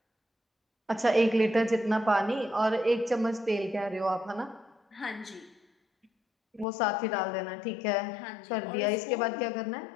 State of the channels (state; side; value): drops out; right; at 6.7 s